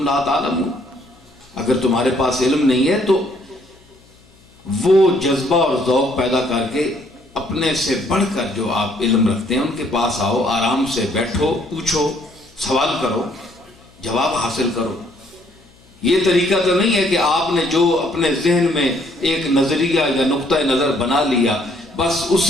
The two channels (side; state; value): left; noise; hum, 29 dB below the sound